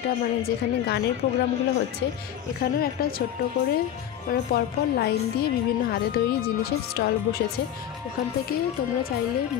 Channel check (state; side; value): quieter; right; 10.5 dB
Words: মানে যেখানে গানের প্রোগ্রামগুলো হচ্ছে এখানেও একটা ছোট্ট করে মানে পরপর লাইন দিয়ে বিভিন্ন হাতে তৈরি জিনিসের স্টল বসেছে। ওখান থেকে তোমরা চাইলে